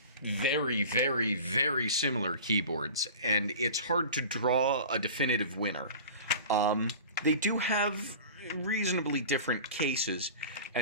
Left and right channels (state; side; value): inverted; both; correlation -0.37